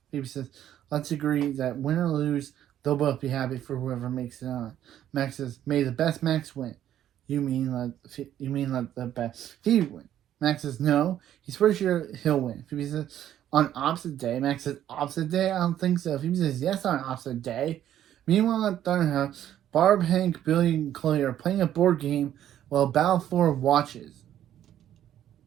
Phoebe says, let's agree that win or lose, they'll both be happy for whoever makes it on. Max says, may the best Max win. You mean let the best Phoebe win. Max says, no, he's pretty sure he'll win. Phoebe says, on opposite day. Max says, opposite day? I don't think so. Phoebe says, yes, on opposite day. Meanwhile at Thunderhouse, Barb, Hank, Billy, and Chloe are playing a board game while Balfour watches.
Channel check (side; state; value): left; quieter; 11.3 dB